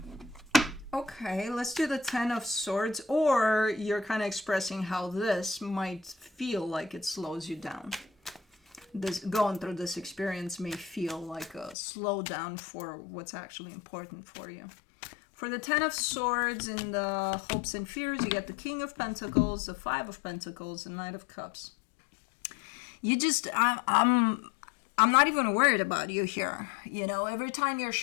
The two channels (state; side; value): drops out; right; at 11.8 s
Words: Okay, let's do the Ten of Swords, or you're kind of expressing how this might feel like it slows you down. This, going through this experience may feel like a slowdown for what's actually important for you. For the Ten of Swords in the hopes and fears, you get the King of Pentacles, the Five of Pentacles, the Knight of Cups. You just, I'm not even worried about you here. You know, every time you're